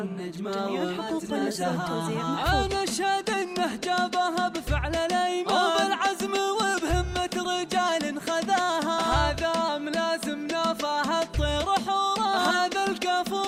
جميع الحقوق والنسخ والتوزيع محفوظ. أنا أشهد إنه جابها بفعل الأيمان وبالعزم وبهمة رجال خذاها، هذا ملازم نافاها الطير حورا، هذا الكفو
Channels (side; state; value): both; identical; correlation 1.00